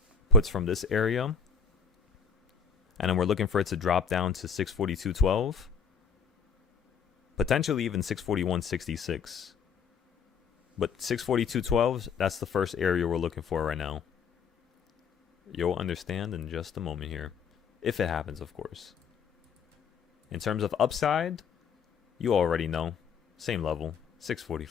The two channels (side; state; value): right; quieter; 6.1 dB